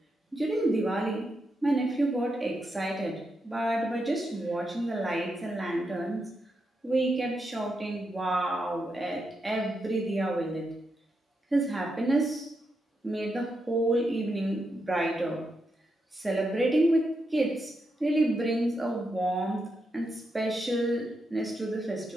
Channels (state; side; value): normal; both; correlation 0.84